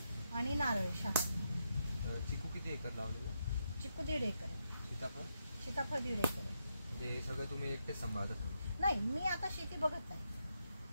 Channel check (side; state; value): both; inverted; correlation -0.82